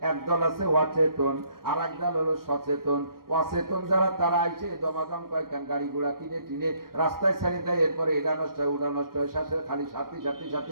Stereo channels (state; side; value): late; left; 0.92 ms